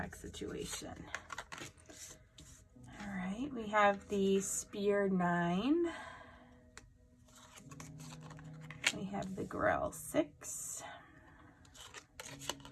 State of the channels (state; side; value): identical; both; correlation 1.00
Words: situation. All right, we have the Spear 9. We have the Grail 6.